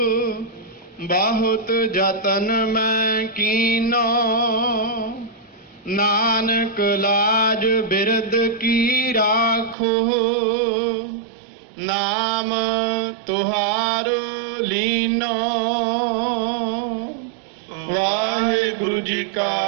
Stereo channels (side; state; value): left; drops out; at 9.8 s